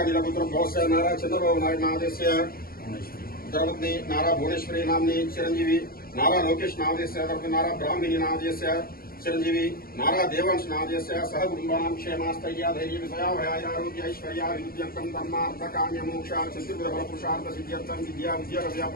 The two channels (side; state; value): right; late; 0.43 ms